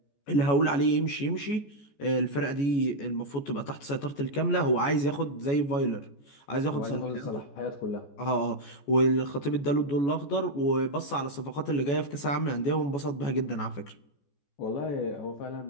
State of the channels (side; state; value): right; late; 14 ms